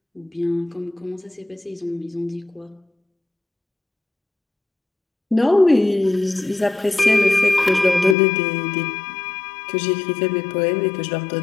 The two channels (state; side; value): drops out; right; at 8.2 s